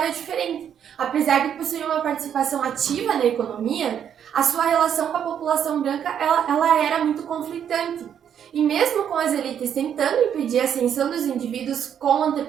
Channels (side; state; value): left; quieter; 8.8 dB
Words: diferente. Apesar de possuir uma participação ativa na economia, a sua relação com a população branca ela era muito conflitante. E mesmo com as elites tentando impedir a ascensão dos indivíduos com